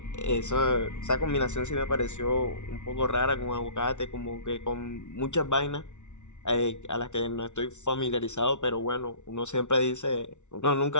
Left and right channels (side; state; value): right; late; 0.84 ms